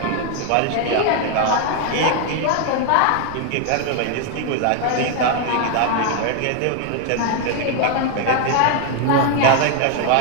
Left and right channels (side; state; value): both; different; correlation 0.00